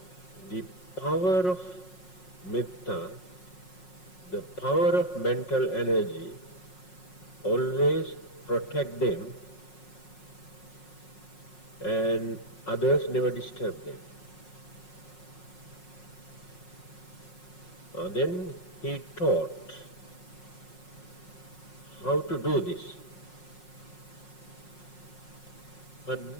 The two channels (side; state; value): right; late; 5.5 ms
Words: the power of Metta, the power of mental energy, always protect them, and others never disturb them. Then he taught how to do this.